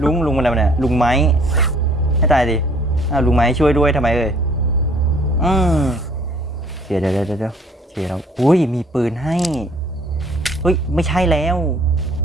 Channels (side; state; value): both; normal; correlation 0.58